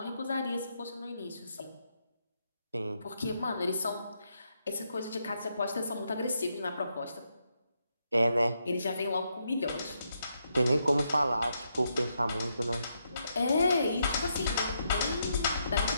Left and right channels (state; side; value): inverted; both; correlation -0.79